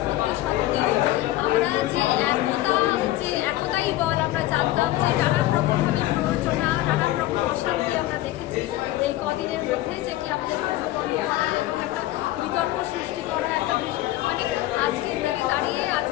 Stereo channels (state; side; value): quieter; right; 15.8 dB